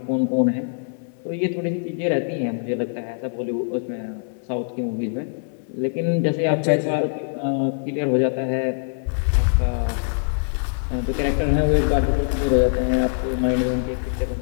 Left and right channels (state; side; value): silent; right; digital silence